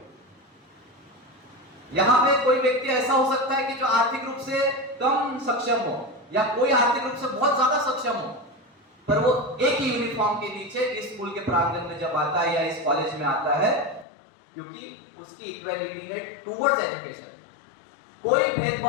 यहाँ पे कोई व्यक्ति ऐसा हो सकता है कि जो आर्थिक रूप से कम सक्षम हो या कोई आर्थिक रूप से बहुत ज्यादा सक्षम हो, पर वो एक ही यूनिफॉर्म के नीचे इस स्कूल के प्रांगण में जब आता है या इस कॉलेज में आता है, क्योंकि उसकी इक्वालिटी है टुवर्ड्स एजुकेशन। कोई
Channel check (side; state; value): right; drops out; at 14.1 s